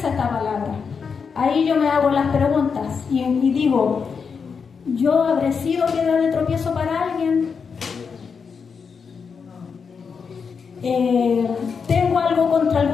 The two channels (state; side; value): quieter; right; 5.8 dB